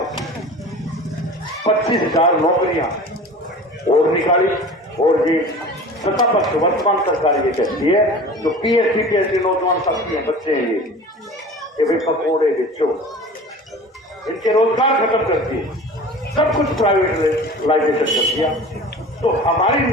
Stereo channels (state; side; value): normal; both; correlation 0.39